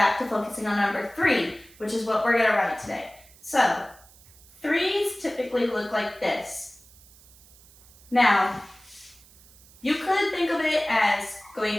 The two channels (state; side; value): noise; right; hiss, 25 dB below the sound